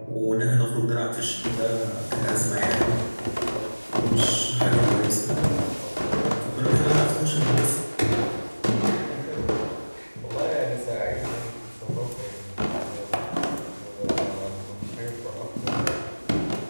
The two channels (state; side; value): inverted; both; correlation -1.00